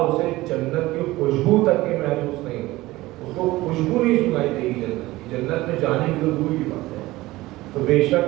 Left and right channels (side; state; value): left; quieter; 18.5 dB